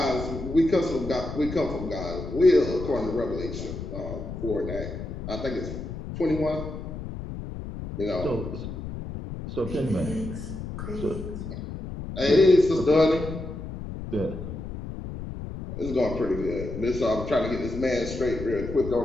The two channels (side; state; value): left; noise; rumble, 8 dB below the sound